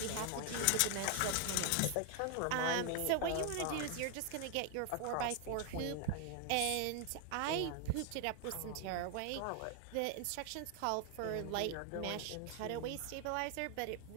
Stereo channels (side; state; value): both; different; correlation 0.00